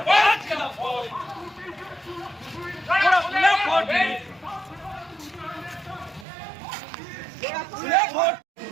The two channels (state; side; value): drops out; left; at 6.2 s